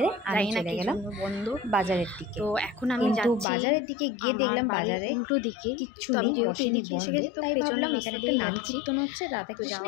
আমি চলে গেলাম বন্ধু বাজারের দিকে। তো এখন আমি কিন্তু বাজারের দিকে গিয়ে দেখলাম বাজারে উল্টো দিকে কিচ্ছু নেই, বসেনি, বন্ধ। তাই ভাবলাম এখানে একটা নাম কীর্তন হচ্ছে, রাধা কৃষ্ণ,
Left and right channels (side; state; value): right; drops out; at 3.5 s